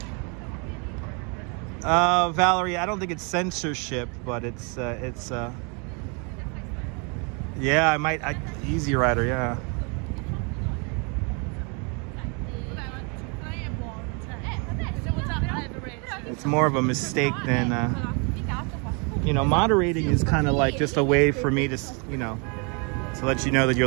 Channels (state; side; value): quieter; left; 34.5 dB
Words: Valerie, I don't think it's censorship, but it's yeah, I might Easy Rider, yeah. It's more of a mistake than you know, moderating is kind of like just a way for me to, you know, to let you know that you're